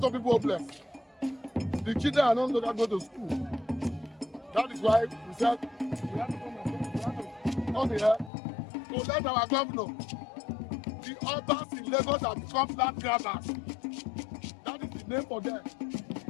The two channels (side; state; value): right; drops out; at 8.3 s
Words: people homeless. The children are not going to go to school. That is why we said we have to come here to let our governor, the Obas in Lagos have become land grabbers. That is the name for them.